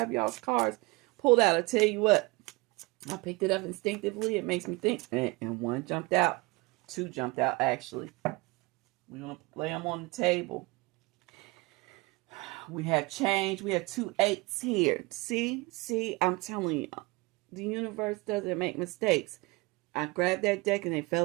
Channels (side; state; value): left; quieter; 24.4 dB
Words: y'all's cards pulled out. I tell you what, I picked it up instinctively. It makes me think. And one jumped out. Two jumped out, actually. We're going to lay them on the table. We have change. We have 2 8s here. See, I'm telling you, the universe doesn't make mistakes. I grabbed that deck and they